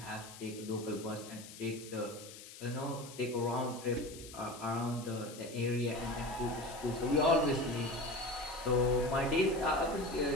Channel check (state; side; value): noise; left; hiss, 15 dB below the sound